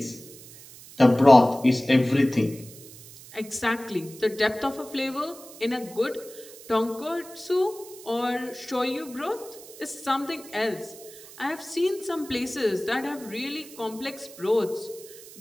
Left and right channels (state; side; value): noise; right; hiss, 18 dB below the sound